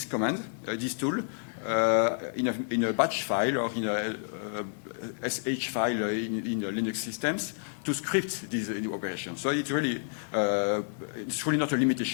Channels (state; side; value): silent; right; digital silence